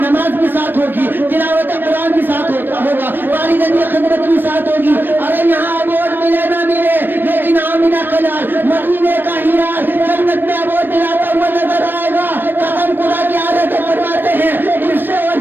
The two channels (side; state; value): left; late; 0.094 ms